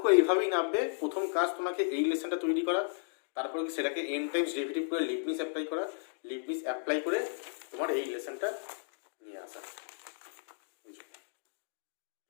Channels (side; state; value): right; silent; digital silence